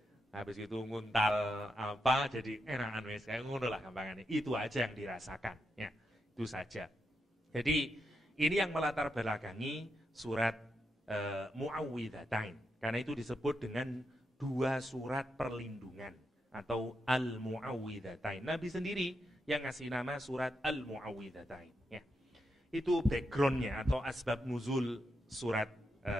Habis itu nguntal apa jadi enakan wis kayak ngono lah gampangannya. Itu aja yang dirasakan ya. Itu saja. Jadi ini yang melatar belakangi surat Muawwidzatain. Karena itu disebut dengan 2 surat perlindungan atau Al-Muawwidzatain. Nabi sendiri yang ngasih nama surat Al-Muawwidzatain ya. Itu backgroundnya atau asbab nuzul surat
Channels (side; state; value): both; normal; correlation 0.84